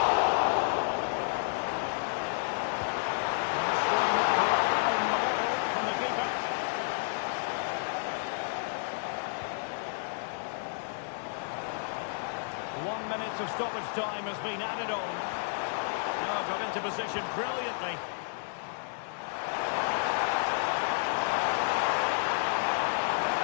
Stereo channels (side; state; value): right; silent; digital silence